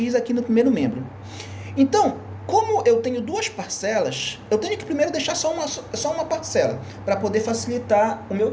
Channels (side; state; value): both; identical; correlation 1.00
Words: aqui no primeiro membro. Então, como eu tenho duas parcelas, eu tenho que primeiro deixar só uma parcela, para poder facilitar o meu